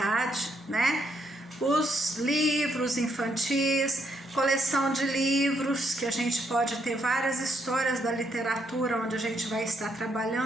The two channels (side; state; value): both; normal; correlation 0.76